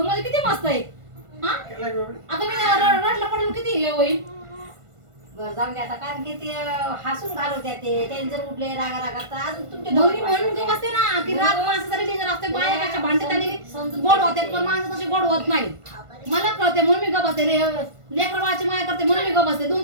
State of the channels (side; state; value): left; late; 1.5 ms